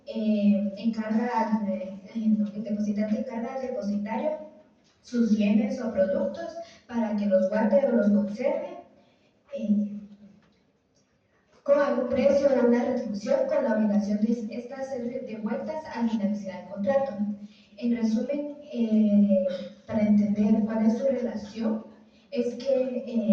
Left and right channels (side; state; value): both; identical; correlation 1.00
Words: el depositante encarga al depositario sus bienes o productos para que los guarde o los conserve con algún precio o una retribución, con la obligación de estas ser devueltas al finalizar el contrato. En resumen, para entender cuál es su relación, es